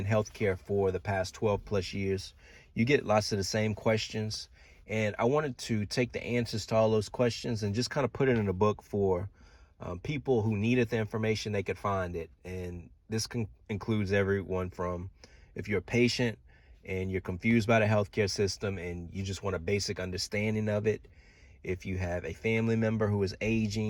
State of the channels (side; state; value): both; identical; correlation 1.00